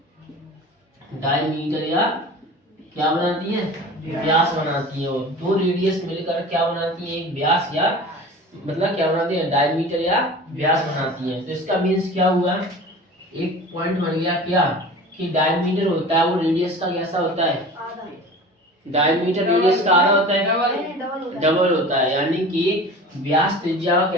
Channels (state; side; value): normal; both; correlation 0.38